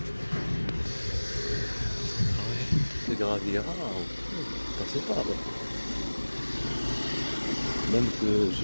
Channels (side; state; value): both; inverted; correlation -1.00